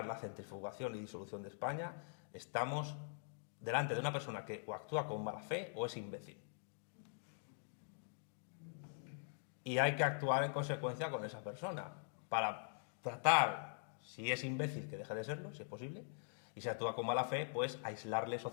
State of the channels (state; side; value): silent; right; digital silence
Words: la centrifugación y disolución de España, estamos delante de una persona que o actúa con mala fe o es imbécil. Y hay que actuar en consecuencia con esa persona para tratar, si es imbécil, que deje de serlo, si es posible, y si actúa con mala fe, pues aislarle